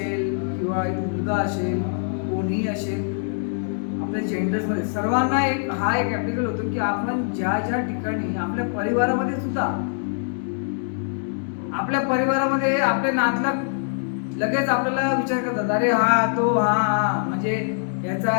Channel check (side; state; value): right; silent; 63 dB below the other